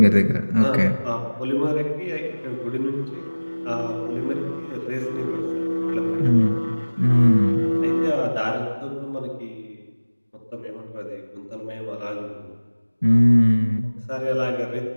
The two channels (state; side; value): inverted; both; correlation -1.00